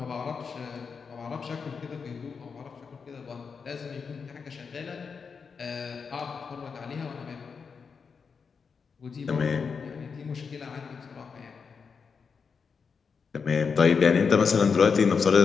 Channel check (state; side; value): quieter; right; 5.7 dB